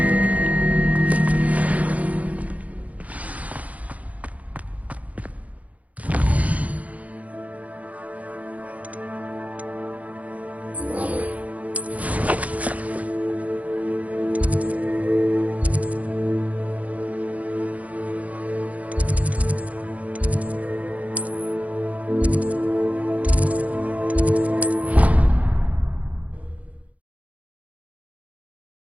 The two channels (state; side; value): late; left; 0.069 ms